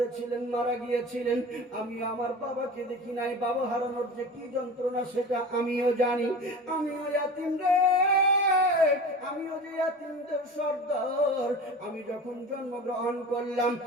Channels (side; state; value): both; normal; correlation 0.34